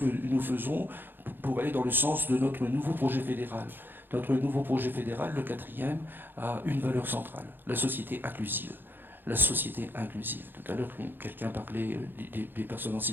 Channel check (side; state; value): left; late; 0.097 ms